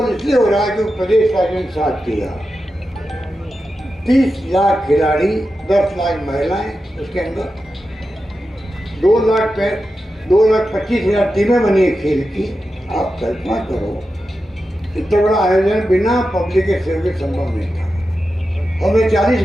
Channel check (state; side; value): normal; both; correlation 0.91